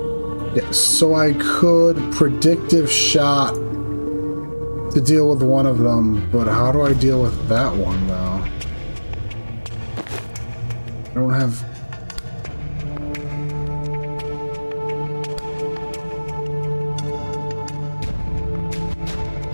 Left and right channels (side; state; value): both; inverted; correlation -1.00